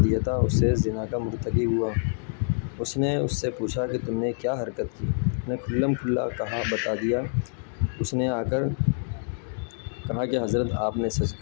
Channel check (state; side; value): silent; right; digital silence